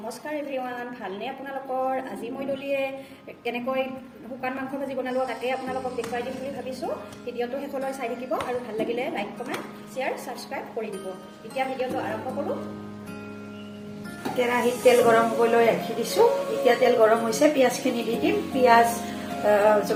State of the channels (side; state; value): both; identical; correlation 1.00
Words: এভৰিৱান, ভালনে আপোনালোকৰ? আজি মই দলিয়ে কেনেকৈ শুকান মাংস ভাজি বনালোঁ তাকে আপোনালোকক দেখুৱাই দিম বুলি ভাবিছোঁ। ভিডিঅ'টো শেষলৈ চাই থাকিব আৰু ভাল লাগিলে লাইক কমেণ্ট শ্বেয়াৰ ছাবস্ক্ৰাইব কৰি দিব। এতিয়া ভিডিঅ'টো আৰম্ভ কৰোঁ। কেৰাহীত তেল গৰম কৰিবলৈ ৰাখি দিছোঁ। এতিয়া তেল গৰম হৈছে, পিঁয়াজখিনি দি দিম। পিঁয়াজ